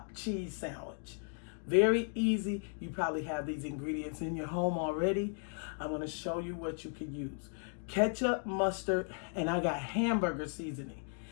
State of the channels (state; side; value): silent; right; 54 dB below the other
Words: cheese sandwich. Very easy. You probably have these ingredients in your home already. I'm gonna show you what you can use. Ketchup, mustard, and I got hamburger seasoning.